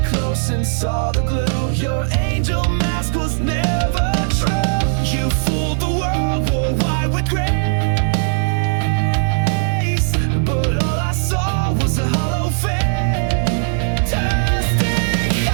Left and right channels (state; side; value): silent; left; digital silence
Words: close and saw the glue. Your angel mask was never true. You fooled the world, wore white with grace, but all I saw was a hollow fantastic